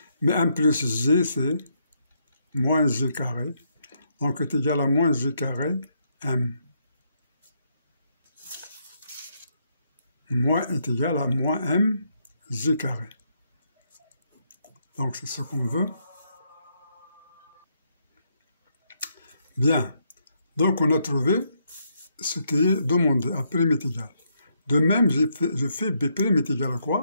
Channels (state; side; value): inverted; both; correlation -0.76